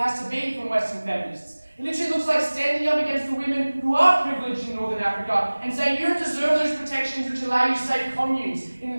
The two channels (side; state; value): both; inverted; correlation -1.00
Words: to be from Western feminists. It literally looks like standing up against the women who are privileged in Northern Africa and saying you don't deserve those protections which allow you safe communes